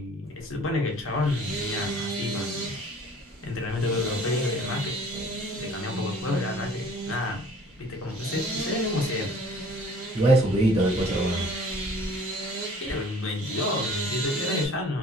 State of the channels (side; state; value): both; normal; correlation 0.51